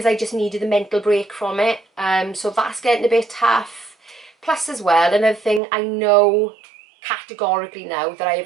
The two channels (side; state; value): left; drops out; at 5.6 s